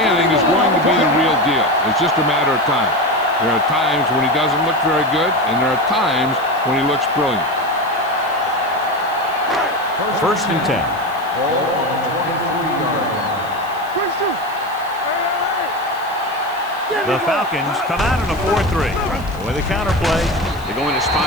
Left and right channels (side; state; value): left; noise; hiss, 23 dB below the sound